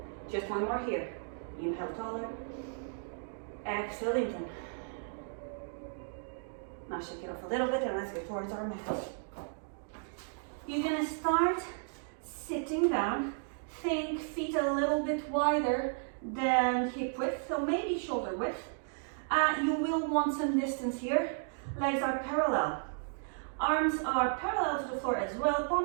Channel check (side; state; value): left; silent; digital silence